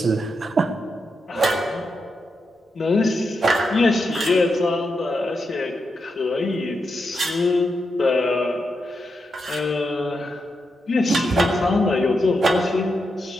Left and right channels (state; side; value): normal; both; correlation 0.85